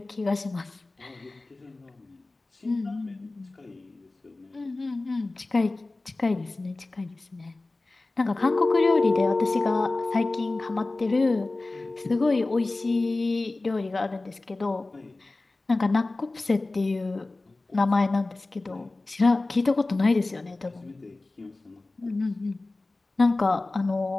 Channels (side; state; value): right; quieter; 3.1 dB